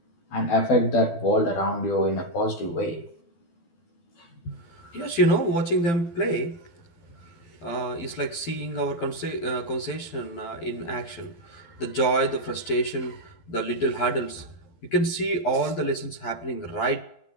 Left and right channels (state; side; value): late; right; 12 ms